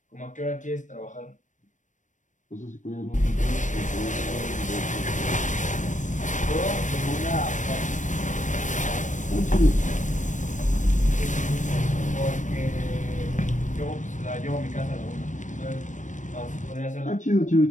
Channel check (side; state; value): right; late; 0.37 ms